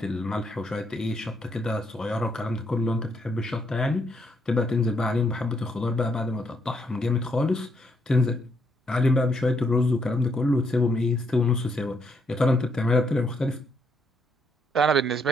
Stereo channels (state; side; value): normal; both; correlation 0.74